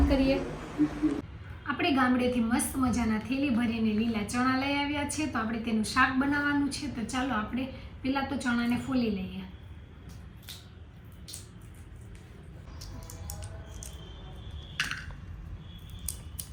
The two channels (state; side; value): identical; both; correlation 1.00